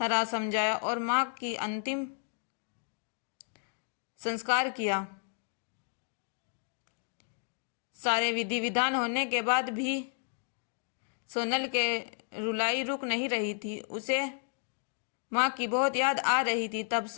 समझाया और माँ की अंतिम संस्कार किया। सारे विधि विधान होने के बाद भी सोनल के रुलाई रुक नहीं रही थी। उसे माँ की बहुत याद आ रही थी। तब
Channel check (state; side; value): silent; right; 56 dB below the other